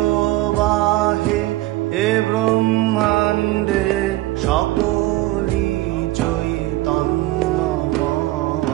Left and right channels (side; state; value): left; quieter; 17.6 dB